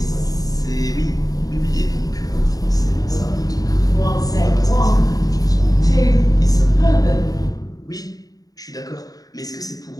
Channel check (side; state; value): right; late; 0.18 ms